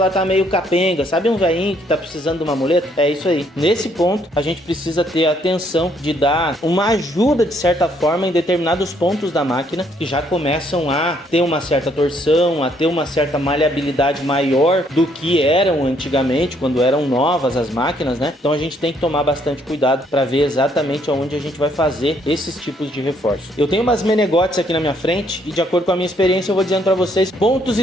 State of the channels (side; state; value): both; normal; correlation 0.68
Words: tá meio capenga. Sabe um velhinho que tá precisando de uma muleta? É isso aí. Nesse ponto, a gente precisa ter a atenção de dar uma ajuda de certa forma em determinados pontos da máquina que já começam a ter uma certa torção, a ter uma certa maleabilidade maior do que eram antigamente, quando eram novas as máquinas, né? Então a gente tem que tomar bastante cuidado para ver exatamente onde a gente vai fazer esses tipos de reforço. Eu tenho umas menegotes aqui na minha frente e, de acordo com a minha experiência, eu vou dizendo para vocês pontos